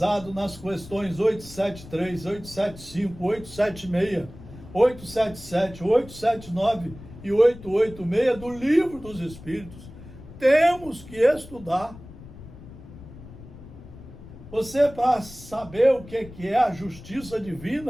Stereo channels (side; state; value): left; noise; rumble, 17 dB below the sound